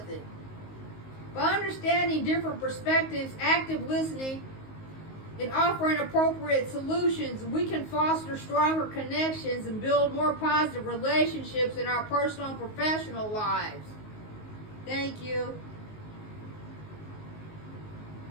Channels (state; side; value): late; right; 19 ms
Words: it. By understanding different perspectives, active listening, and offering appropriate solutions, we can foster stronger connections and build more positive relationships in our personal and professional lives. Thank you.